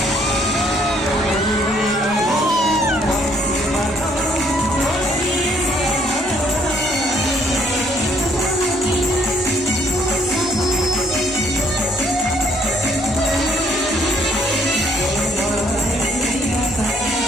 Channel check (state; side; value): normal; both; correlation 0.65